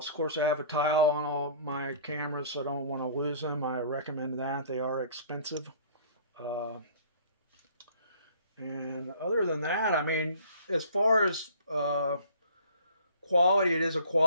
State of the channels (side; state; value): both; inverted; correlation -0.51